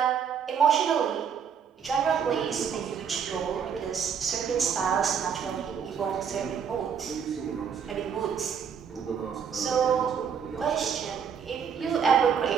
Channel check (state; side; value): quieter; left; 7.3 dB